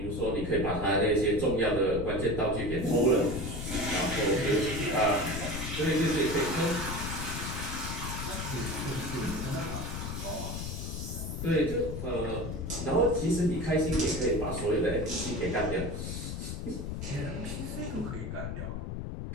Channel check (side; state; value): left; noise; rumble, 5 dB below the sound